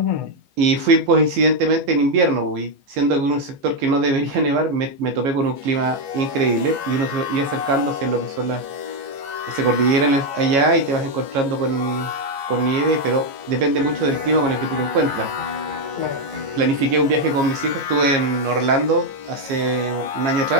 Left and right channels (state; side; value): late; left; 15 ms